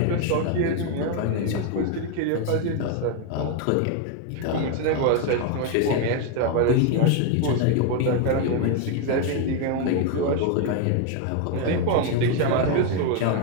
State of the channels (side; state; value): both; different; correlation 0.01